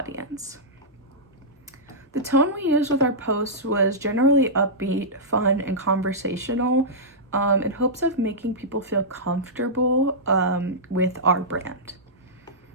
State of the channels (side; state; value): both; normal; correlation -0.14